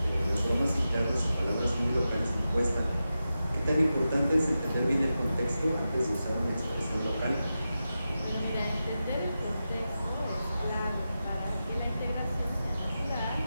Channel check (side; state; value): both; inverted; correlation -0.91